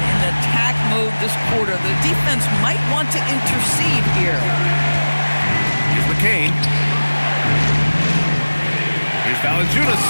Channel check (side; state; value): both; inverted; correlation -1.00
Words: attack mode this quarter. The defense might want to intercede here. Here's McCain. Here's Valanciunas.